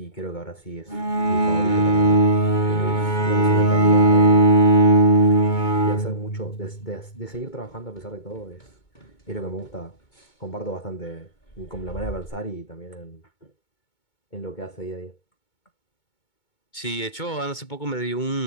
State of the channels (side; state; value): right; late; 2.2 ms